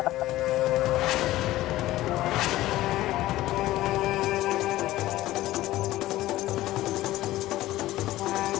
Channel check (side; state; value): right; quieter; 16.0 dB